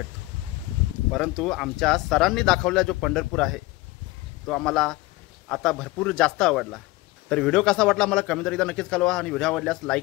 परंतु आमच्या सरांनी दाखवलेला जो पंढरपूर आहे तो आम्हाला आता भरपूर जास्त आवडला. तर व्हिडिओ कसा वाटला मला कमेंट एकदा नक्कीच कळवा आणि व्हिडिओ आवडल्यास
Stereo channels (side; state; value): right; quieter; 20.2 dB